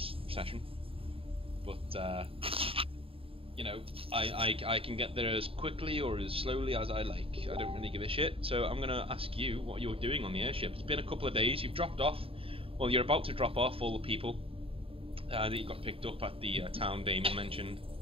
session, but you know, I can get there as quickly or as slowly as I like. I don't really give a shit. So I'm gonna ask you what you're doing on the airship. It's been a couple of days. You've dropped off. Well, you're about to drop off all the people that you got picked up at the town Damon mentioned.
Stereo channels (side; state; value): left; late; 0.27 ms